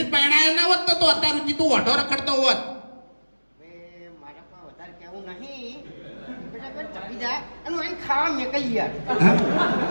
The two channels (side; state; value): both; inverted; correlation -1.00